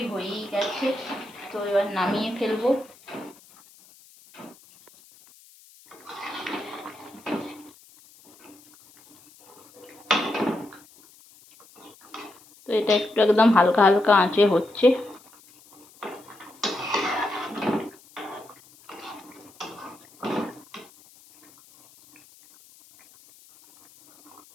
হয়েই গেছে, তো এবার নামিয়ে ফেলবো। তো এটা একটু একদম হালকা হালকা আঁচে হচ্ছে।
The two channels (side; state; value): left; noise; hiss, 25 dB below the sound